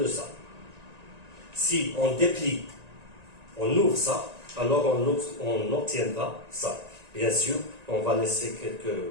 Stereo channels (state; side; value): late; left; 1.9 ms